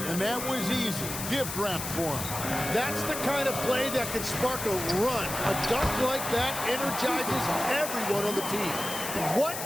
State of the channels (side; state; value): left; noise; hiss, 6 dB below the sound